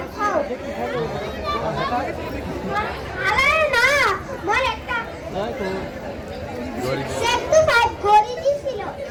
খাও আরে না মোর একটা সেটু ফাইভ গড়ি দিছিল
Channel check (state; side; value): identical; both; correlation 1.00